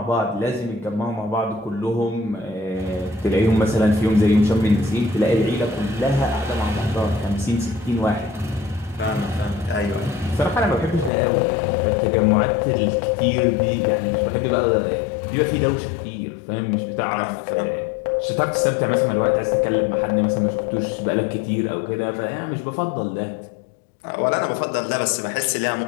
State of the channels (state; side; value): drops out; right; at 11.1 s